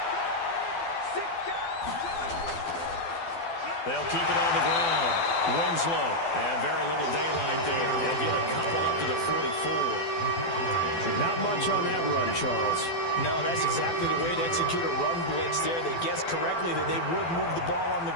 They'll keep it on the ground. Winslow, and very little daylight there. They'll get a couple up to the 44. Not much on that run, Charles. No, that's exactly the way to execute a run blitz there. They guessed correctly that they would move the ball on the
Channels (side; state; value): right; late; 12 ms